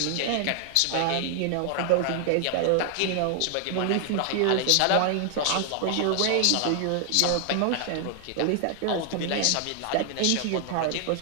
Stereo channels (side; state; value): both; different; correlation 0.00